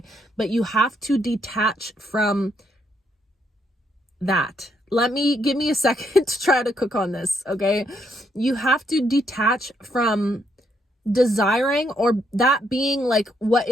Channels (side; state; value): both; normal; correlation 0.74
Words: But you have to detach from that. give me a second to try to cook on this, okay? You have to detach from desiring or that being like what